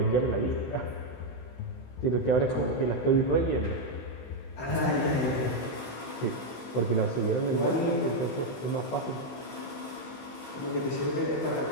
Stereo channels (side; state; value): right; late; 16 ms